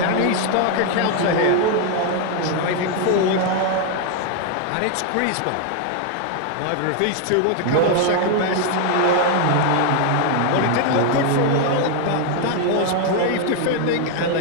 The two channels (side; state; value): both; different; correlation 0.00